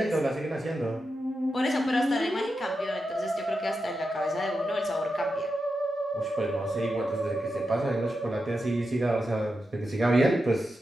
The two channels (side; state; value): both; normal; correlation 0.88